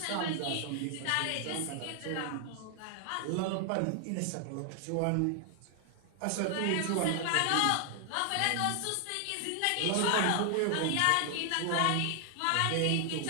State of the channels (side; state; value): both; different; correlation 0.00